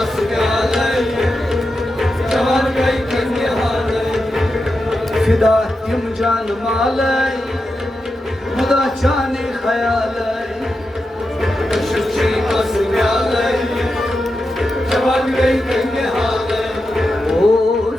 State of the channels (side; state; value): both; normal; correlation 0.89